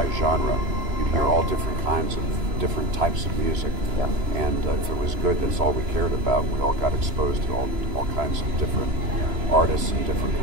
You'd hear all different kinds of different types of music. Yeah. And if it was good, that's all we cared about. We all got exposed to all kinds of different artists and different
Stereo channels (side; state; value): left; late; 2.9 ms